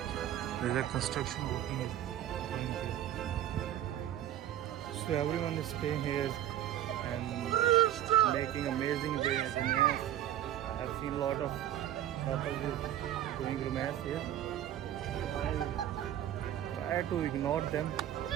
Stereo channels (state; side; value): quieter; left; 12.0 dB